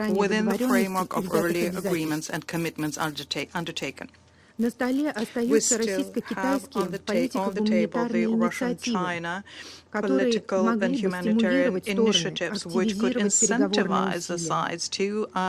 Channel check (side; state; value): both; identical; correlation 1.00